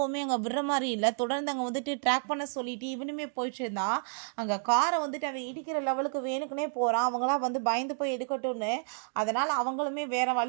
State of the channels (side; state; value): left; silent; digital silence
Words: அங்கே விடுற மாதிரி இல்லை, தொடர்ந்து அங்கே வந்துட்டு ட்ராக் பண்ண சொல்லிட்டு இவனுமே போயிட்டு இருந்தா. அங்கே காரை வந்துட்டு அவன் இடிக்கிற லெவலுக்கு வேணுக்குனே போகிறான். அவங்களாம் வந்து பயந்து போய் எடுக்கட்டும்னு, அதனால் அவங்களுமே வேறு